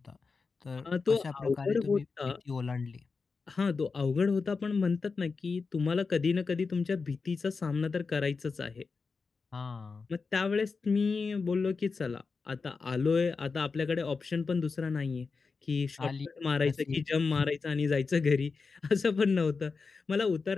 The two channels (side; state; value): right; quieter; 4.6 dB